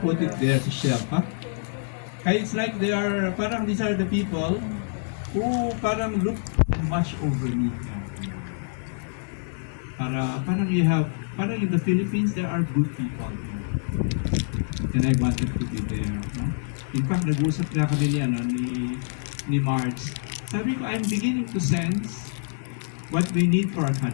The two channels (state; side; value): silent; right; digital silence